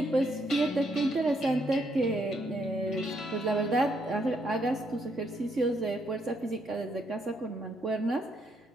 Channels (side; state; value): both; normal; correlation 0.74